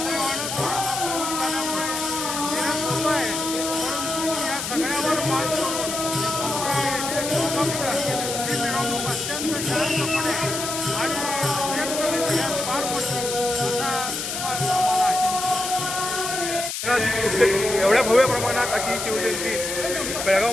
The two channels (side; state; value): left; noise; hiss, 4 dB below the sound